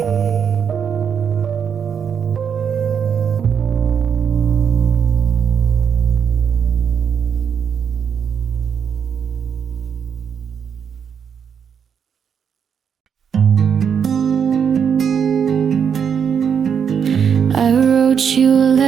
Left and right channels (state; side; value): quieter; left; 7.4 dB